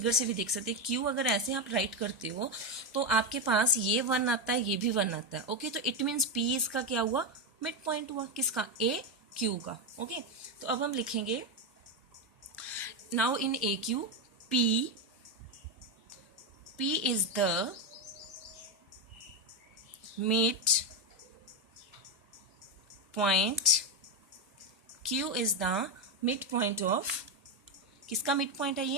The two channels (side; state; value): both; normal; correlation 0.08